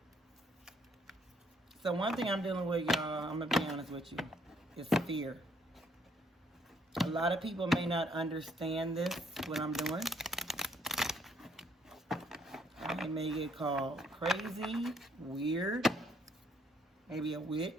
So one thing I'm dealing with, y'all, I'm going to be honest with you, is fear. A lot of people may not understand this, what I'm doing. I may get called crazy, weird, maybe a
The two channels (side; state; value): both; normal; correlation 0.68